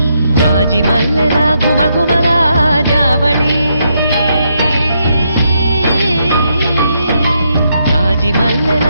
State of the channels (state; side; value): inverted; both; correlation -0.78